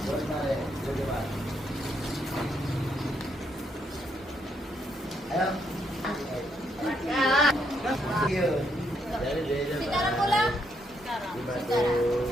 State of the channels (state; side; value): normal; both; correlation 0.76